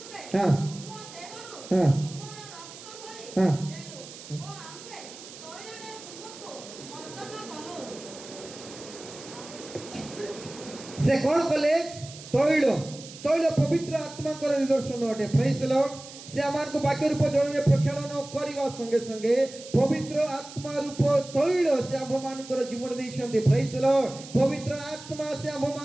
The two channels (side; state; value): right; noise; hiss, 15 dB below the sound